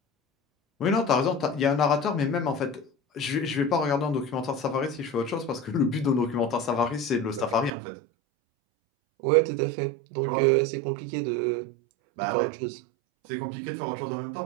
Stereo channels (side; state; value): left; drops out; at 7.7 s